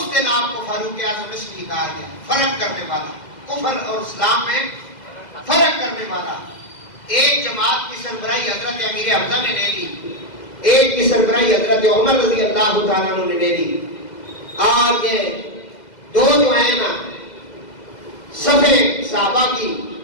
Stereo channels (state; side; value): late; right; 2.0 ms